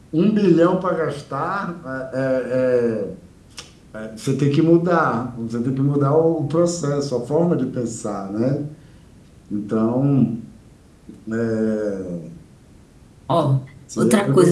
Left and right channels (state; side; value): identical; both; correlation 1.00